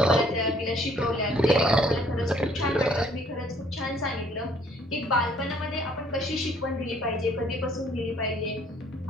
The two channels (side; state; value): both; normal; correlation 0.61